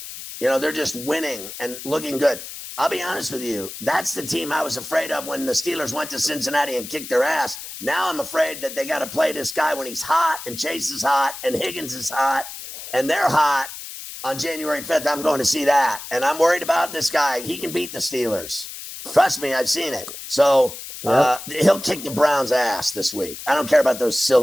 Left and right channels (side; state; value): left; noise; hiss, 11 dB below the sound